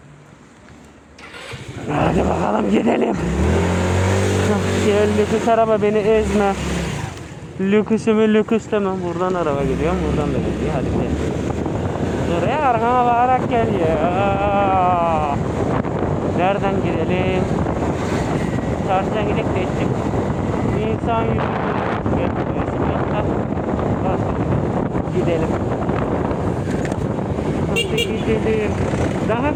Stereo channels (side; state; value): both; identical; correlation 1.00